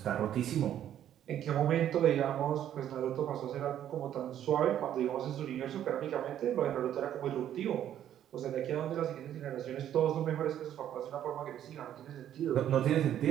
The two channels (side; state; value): left; quieter; 10.8 dB